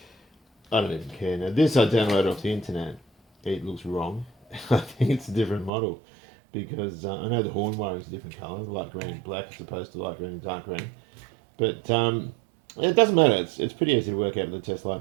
I don't even care. Now this I downloaded off the internet. It looks wrong. I think it's a different model because I know the horn wiring is a different colour, light green and black as opposed to light green and dark green. But it doesn't matter. It's pretty easy to work out with a test light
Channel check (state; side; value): drops out; left; at 5.7 s